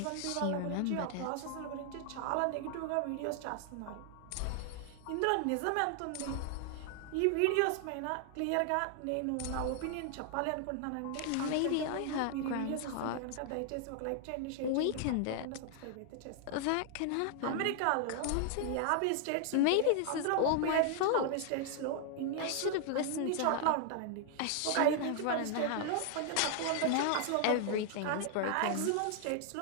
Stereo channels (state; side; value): different; both; correlation 0.00